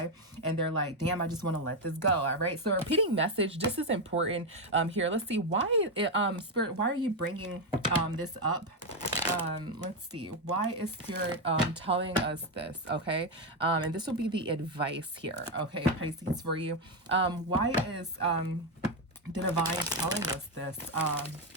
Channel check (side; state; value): both; normal; correlation 0.07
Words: and they're like, damn, I just want to let this go. All right, so repeating message, this is important here. Let's see, why Spirit, why are you bringing this up? Let's see, why is Spirit telling us this, okay? And this will be the advice here, okay, Pisces, for you. Why is the Divine telling us this